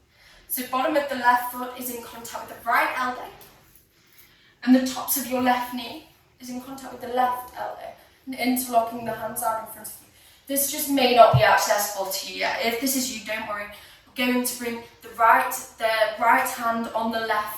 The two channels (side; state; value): both; identical; correlation 1.00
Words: So bottom of the left foot is in contact with the right elbow. And the tops of your left knee is in contact with the left elbow. And interlocking the hands out in front of you. This just may not be accessible to you yet. If this is you, don't worry. We're going to bring the right hand on the